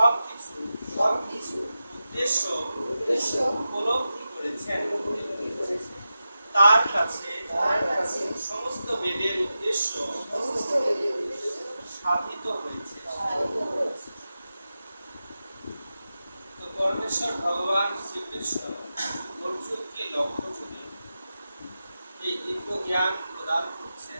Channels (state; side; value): inverted; both; correlation -0.92